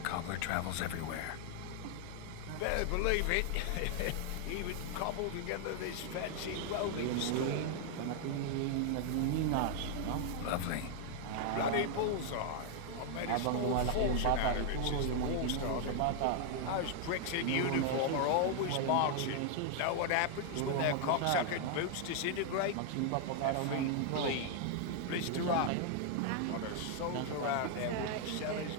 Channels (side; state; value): both; different; correlation 0.00